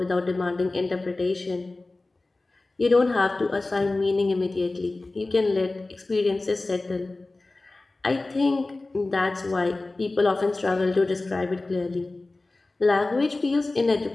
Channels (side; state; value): right; quieter; 3.1 dB